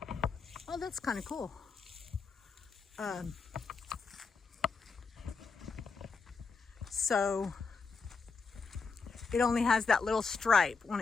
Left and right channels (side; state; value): right; quieter; 4.9 dB